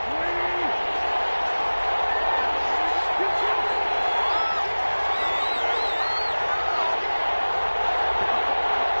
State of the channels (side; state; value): both; inverted; correlation -1.00